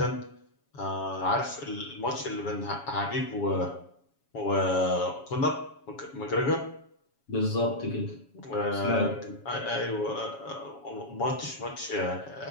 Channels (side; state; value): right; late; 7.2 ms